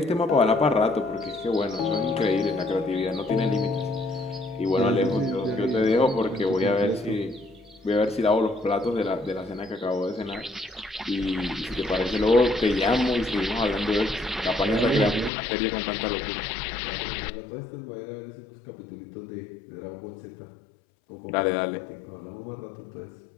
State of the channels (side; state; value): right; drops out; at 15.3 s